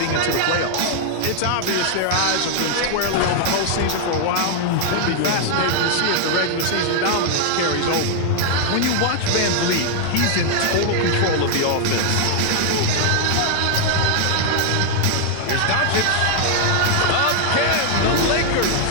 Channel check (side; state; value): both; different; correlation 0.00